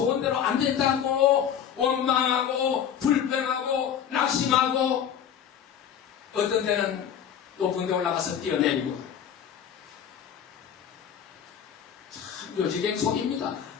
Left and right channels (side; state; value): right; quieter; 8.9 dB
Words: 안 된다고 원망하고 불평하고 낙심하고 어떤 데는 높은 데 올라가서 뛰어내리고 참 요지경 속입니다.